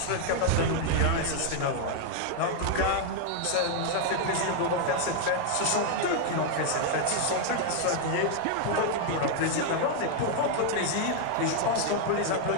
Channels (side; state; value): both; different; correlation 0.00